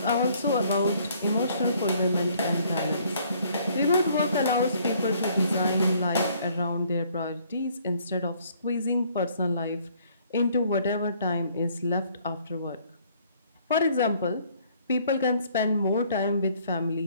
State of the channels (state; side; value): inverted; both; correlation -0.62